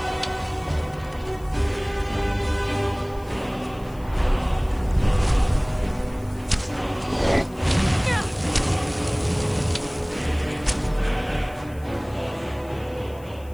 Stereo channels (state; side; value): noise; left; hiss, 25 dB below the sound